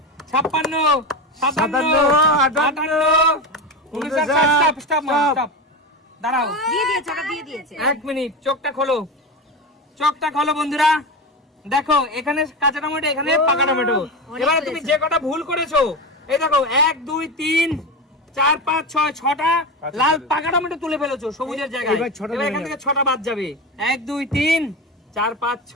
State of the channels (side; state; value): both; normal; correlation 0.21